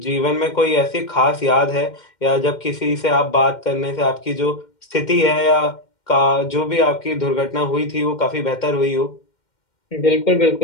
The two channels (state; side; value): late; right; 2.1 ms